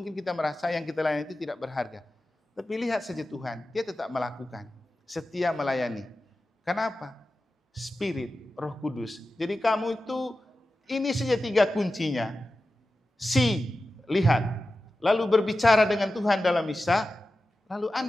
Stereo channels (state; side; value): normal; both; correlation 0.94